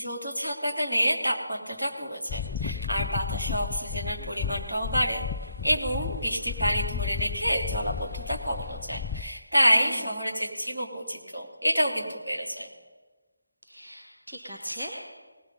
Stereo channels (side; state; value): both; inverted; correlation -0.80